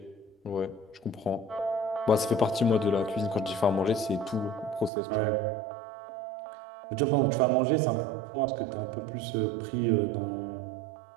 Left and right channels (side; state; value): left; drops out; at 4.9 s